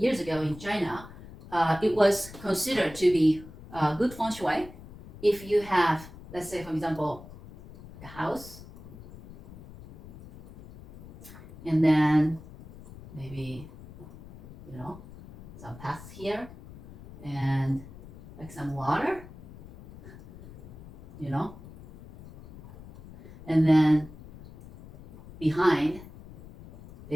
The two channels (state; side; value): noise; left; rumble, 18 dB below the sound